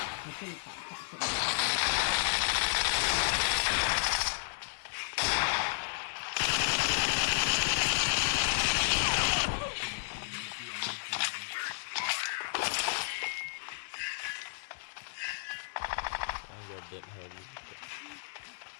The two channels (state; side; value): silent; right; digital silence